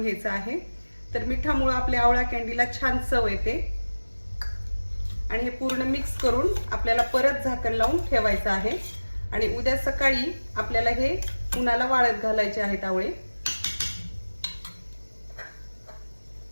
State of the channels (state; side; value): inverted; both; correlation -1.00